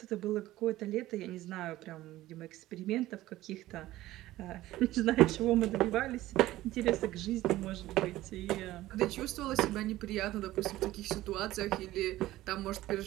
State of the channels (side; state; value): left; quieter; 16.0 dB